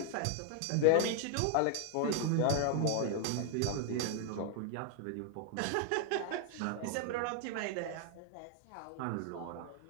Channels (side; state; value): both; different; correlation 0.00